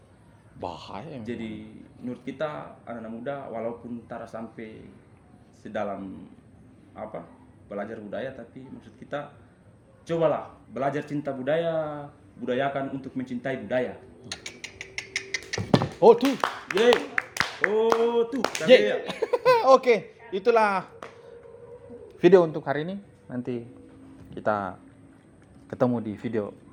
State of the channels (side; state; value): both; identical; correlation 1.00